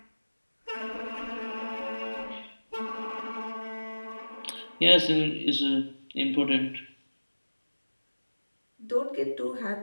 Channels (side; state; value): both; inverted; correlation -1.00